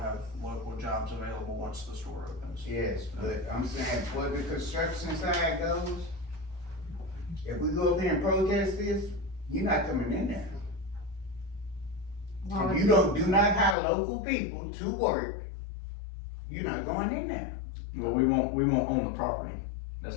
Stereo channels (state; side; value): drops out; right; at 13.8 s